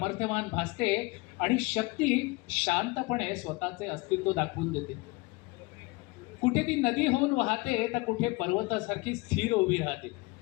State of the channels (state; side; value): quieter; right; 24.2 dB